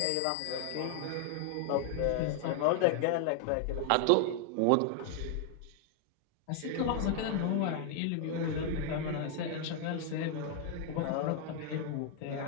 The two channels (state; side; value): different; both; correlation 0.00